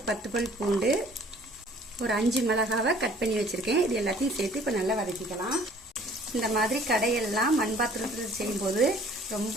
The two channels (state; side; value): normal; both; correlation 0.54